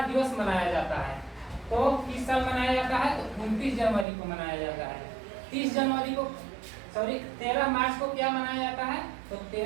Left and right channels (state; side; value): drops out; left; at 4.0 s